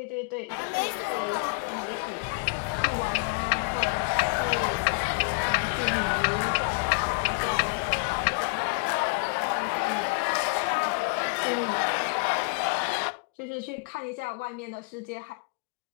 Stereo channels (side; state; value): right; quieter; 35.0 dB